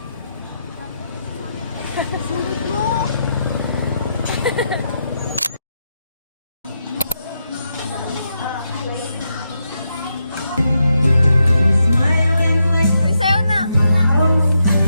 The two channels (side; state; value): both; inverted; correlation -0.83